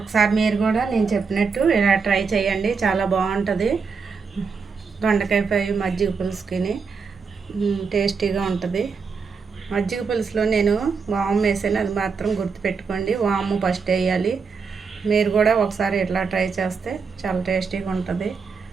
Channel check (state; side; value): quieter; left; 5.3 dB